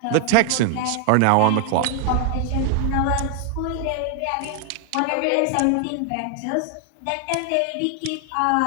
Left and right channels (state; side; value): different; both; correlation 0.00